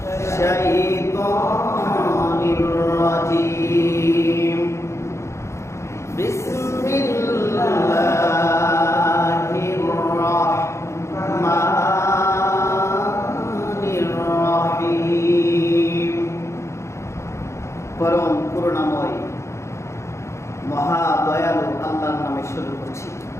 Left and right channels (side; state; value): right; late; 0.14 ms